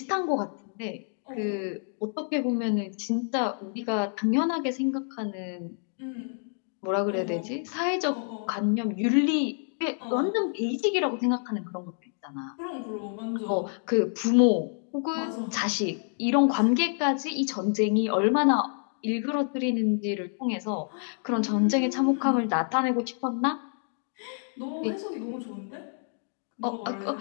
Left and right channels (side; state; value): right; silent; 59 dB below the other